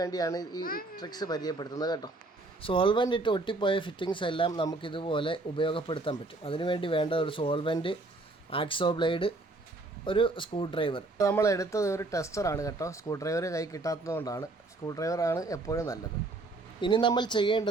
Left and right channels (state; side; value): quieter; left; 3.0 dB